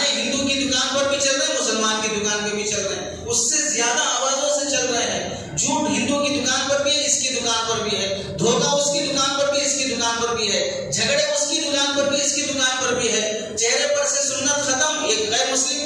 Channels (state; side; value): identical; both; correlation 1.00